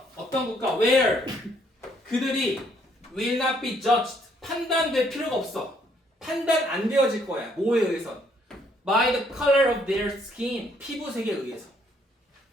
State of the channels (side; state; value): both; normal; correlation 0.67